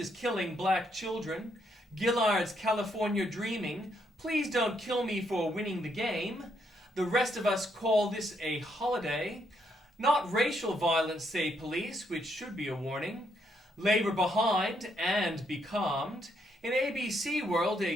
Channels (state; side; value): normal; both; correlation 0.75